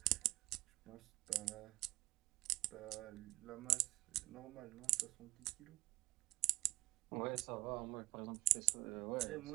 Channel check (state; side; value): quieter; left; 18.2 dB